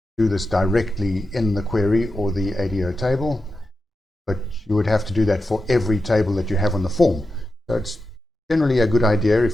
do this directly in the query or the ADO table, but you would have to do that for every table that you have on the form. So it's generally a good idea,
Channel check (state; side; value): normal; both; correlation 0.90